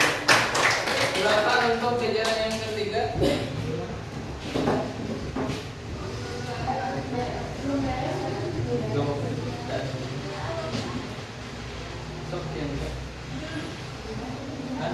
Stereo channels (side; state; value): both; identical; correlation 1.00